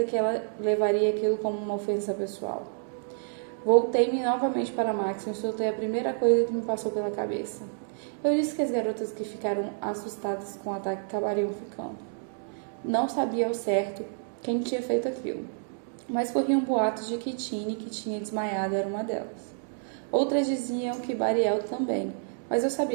que ela levaria aquilo como uma ofensa pessoal. Voltei-me novamente para Maxon e soltei a primeira coisa que me passou pela cabeça. Eu disse que as garotas que ficaram assustadas com o ataque acabariam ficando. Não sabia ao certo quem tinha feito aquilo. mas corriam boatos de que Tini, que tinha desmaiado, era uma delas. Outras diziam que Bariel também, mas eu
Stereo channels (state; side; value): silent; left; digital silence